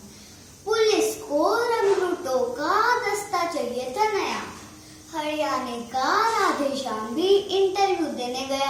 पुलिस को रंगरूटों का दस्ता चाहिए था नया। हरियाणा का राधेश्याम भी इंटरव्यू देने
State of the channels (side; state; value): both; identical; correlation 1.00